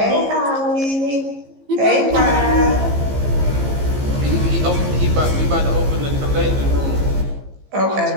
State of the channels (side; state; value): left; late; 15 ms